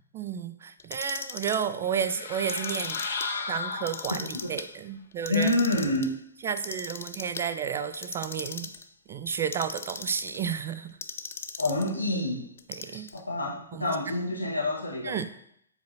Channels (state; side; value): inverted; both; correlation -0.39